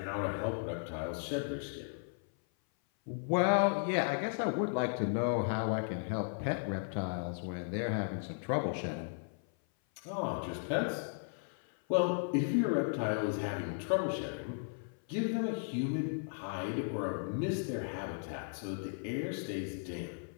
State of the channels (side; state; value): right; silent; 54 dB below the other